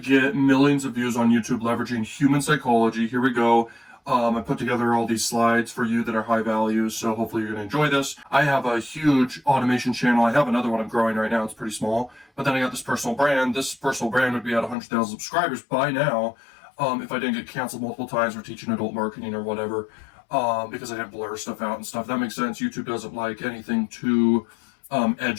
millions of views on YouTube leveraging human psychology. Here we go. I put together all these slides for you that are high value, so hopefully you're going to enjoy this. I have a huge automation channel. I have another one I'm growing right now. It's pretty small. But then I got this personal brand. This personal brand would be at 100,000 subscribers by now if I didn't get canceled multiple times for teaching adult marketing or whatever, because I didn't blur stuff out and stuff. That makes sense. YouTube doesn't like anything too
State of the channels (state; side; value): drops out; right; at 14.8 s